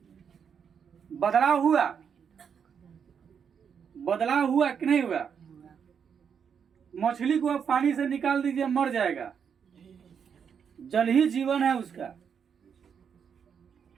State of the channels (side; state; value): left; quieter; 7.2 dB